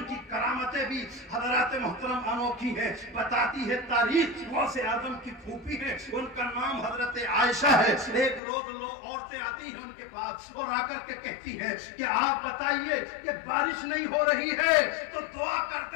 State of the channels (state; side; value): drops out; right; at 8.4 s